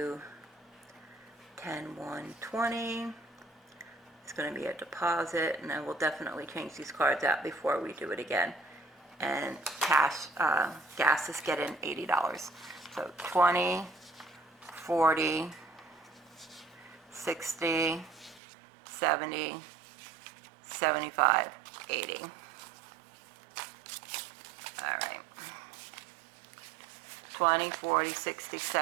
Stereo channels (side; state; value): left; drops out; at 18.4 s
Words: 10, 1, 20. It's going to be a deposit, and I will definitely change these cards out before we do it again. And gas is getting $80. So 20, 40, 60, 70, 75, 80. All right. 20, 40, 60,